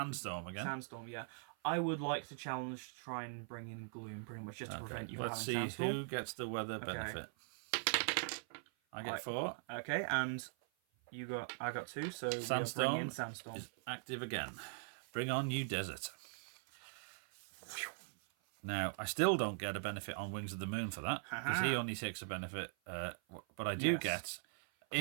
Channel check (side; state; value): left; silent; 50 dB below the other